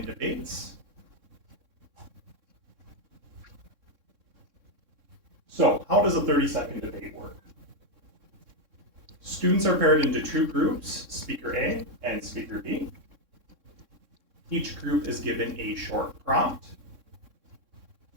debates. So, how does a 30-second debate work? Students are paired into two groups, Speaker A and Speaker B. Each group is given a short prompt,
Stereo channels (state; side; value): late; left; 3.6 ms